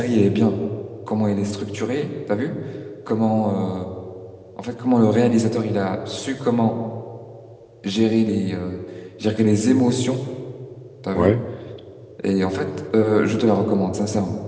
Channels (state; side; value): identical; both; correlation 1.00